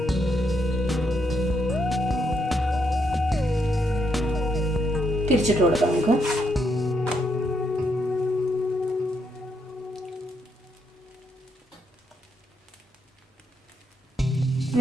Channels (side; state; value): both; normal; correlation 0.77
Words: തിരിച്ചിട്ട് കൊടുക്കാം നമുക്ക്.